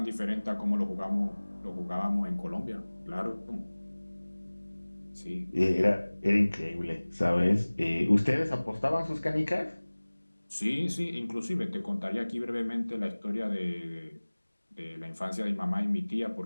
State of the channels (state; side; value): inverted; both; correlation -1.00